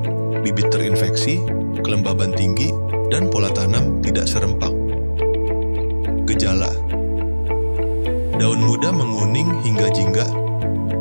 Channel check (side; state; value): both; inverted; correlation -1.00